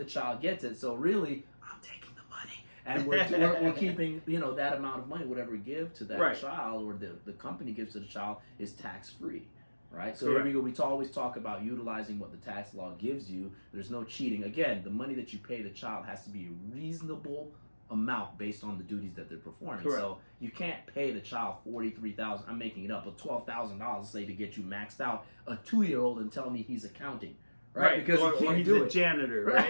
child gets it. So really, I'm taking the money. And we're keeping, that amount of money, whatever we give to that child or the company gives to the child is tax free. Right? So here we go. We always talk about utilizing what the tax law gives you. There's no cheating. Again, the money that you pay the child has to be a reasonable amount based on the duties that they're performing. So you can't pay the child $43,000. I'm making it up, but $12,000, say, to get you maxed out. A 2-year-old and tell me he's accounting, right? Because he can't he's do a janitor,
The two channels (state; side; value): inverted; both; correlation -1.00